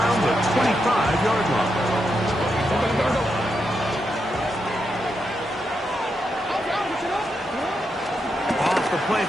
the 25-yard line. Off the play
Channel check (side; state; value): both; normal; correlation 0.84